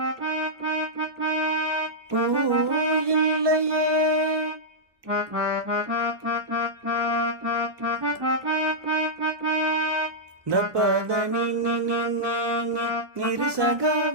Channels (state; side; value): late; left; 1.1 ms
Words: பூ இல்லையே த பத நி நி நி நி நி நிரி சகா